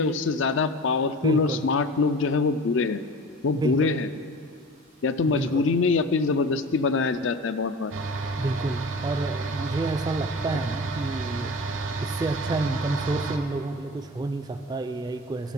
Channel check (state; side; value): normal; both; correlation 0.37